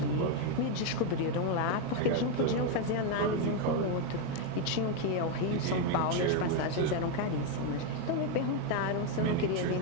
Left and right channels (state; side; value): different; both; correlation 0.01